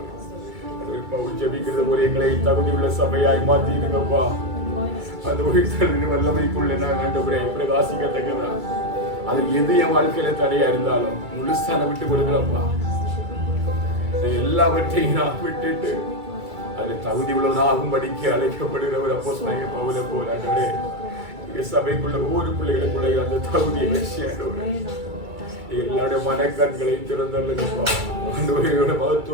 ஆண்டவர் ஜெபிக்கிறது போல எங்களை தகுதியுள்ள சபையாய் மாற்றிடுங்கப்பா. அந்த உயிர்த்தலின் வல்லமைக்குள்ள நான் ஆண்டவரே பிரகாசிக்கத்தக்கதா அது எது என் வாழ்க்கையில தடையா இருந்தாலும் முழுசான விட்டு கொடுக்குறப்பா. எல்லாவற்றையும் நான் விட்டுட்டு அதில் தகுதி உள்ளவனாகும்படிக்கு அழைக்கப்படுகிற ஒரு அப்போஸ்தலனாகிய பவுலை போல ஆண்டவரே சபைக்குள்ள ஒவ்வொரு பிள்ளைகளுக்குள்ள அந்த தகுதியை வச்சு ஆண்டவரே எல்லாருடைய மனக்கண்களை திறந்தல்லுங்கப்பா. ஆண்டவரையோட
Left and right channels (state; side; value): late; left; 2.3 ms